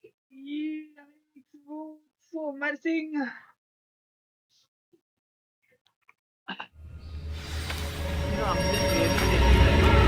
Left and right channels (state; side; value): identical; both; correlation 1.00